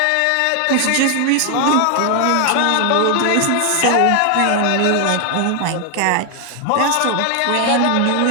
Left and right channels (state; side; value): different; both; correlation 0.00